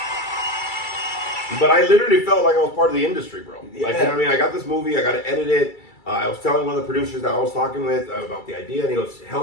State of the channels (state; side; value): late; right; 2.3 ms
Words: But I literally felt like I was part of the industry, bro. Yeah. Like, you know what I mean? I got this movie. I got to edit it. I was telling one of the producers that I was talking with about the idea, and he goes,